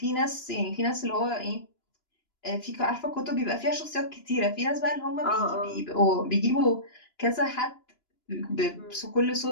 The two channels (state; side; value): late; right; 2.9 ms